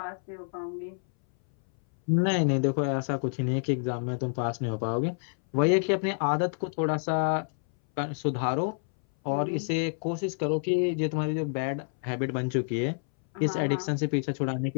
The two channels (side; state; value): right; silent; 59 dB below the other